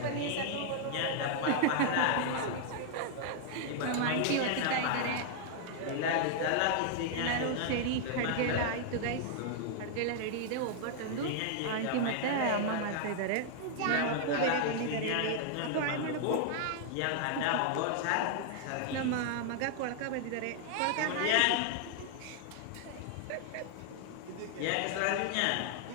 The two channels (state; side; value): different; both; correlation 0.00